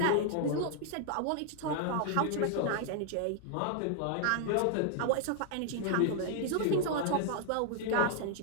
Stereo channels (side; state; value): both; different; correlation 0.00